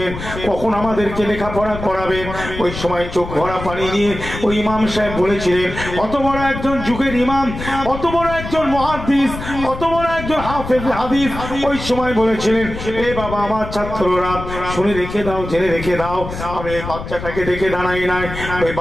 কখন আমাদেরকে লেখাপড়া করাবেন? ওই সময় চোখ ভরা পানি নিয়ে ওই ইমাম সাহেব বলেছিলেন, অত বড় একজন যুগের ইমাম, অত বড় একজন মুহাদ্দিস, অত বড় একজন হাফেজ হাদিস, ওই সময় বলেছিলেন, এ বাবা আমার ছাত্ররা শুনে রেখে দাও, জেনে রেখে দাও, আমি এই বাচ্চাটাকে দেখে দাঁড়াই নাই। ওই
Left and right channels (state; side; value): noise; left; rumble, 9 dB below the sound